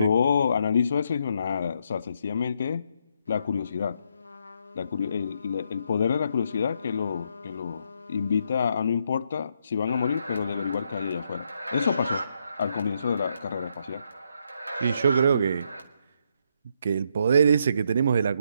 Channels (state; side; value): inverted; both; correlation -0.76